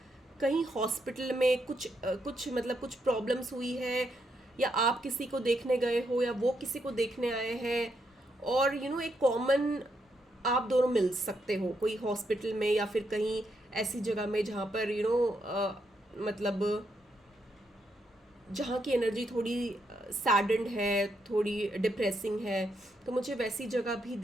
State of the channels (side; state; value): both; normal; correlation 0.79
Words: कहीं हॉस्पिटल में कुछ मतलब कुछ प्रॉब्लम्स हुई है, या आप किसी को देखने गए हो या वो किसी को देखने आए हैं, और एक कॉमन आप दोनों मिल सकते हो कोई हॉस्पिटल में या फिर कहीं ऐसी जगह में जहाँ पर मतलब जहाँ की एनर्जी थोड़ी सैडेंड है, थोड़ी डिप्रेसिंग है। तो मुझे वैसी जगह भी